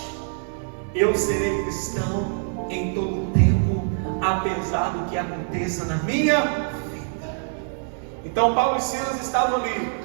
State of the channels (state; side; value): silent; left; digital silence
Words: Eu serei cristão em todo tempo, apesar do que aconteça na minha vida. Então Paulo e Silas estavam ali,